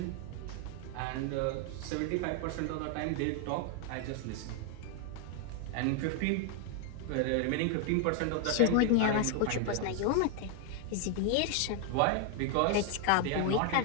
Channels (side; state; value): both; different; correlation 0.00